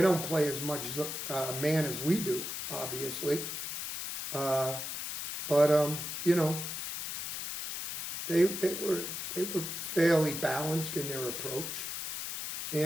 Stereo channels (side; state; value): left; noise; hiss, 5 dB below the sound